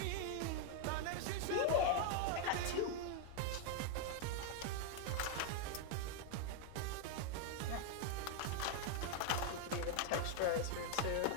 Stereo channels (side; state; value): both; different; correlation 0.00